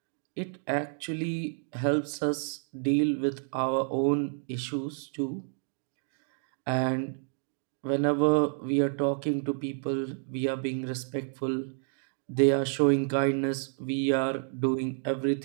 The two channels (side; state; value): left; silent; 58 dB below the other